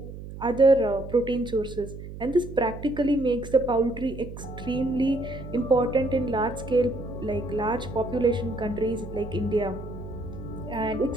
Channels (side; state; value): right; noise; hum, 11 dB below the sound